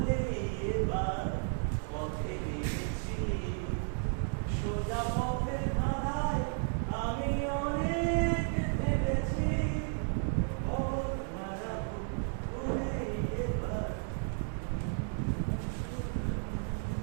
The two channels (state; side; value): silent; left; 56 dB below the other